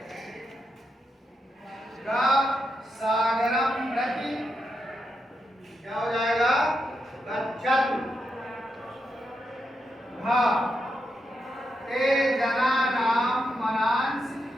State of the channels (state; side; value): normal; both; correlation 0.84